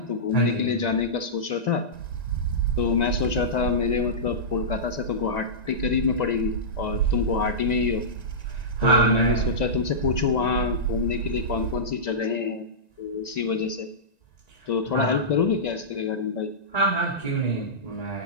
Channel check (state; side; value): late; right; 1.9 ms